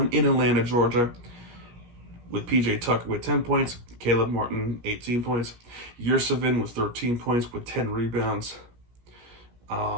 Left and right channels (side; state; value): left; late; 17 ms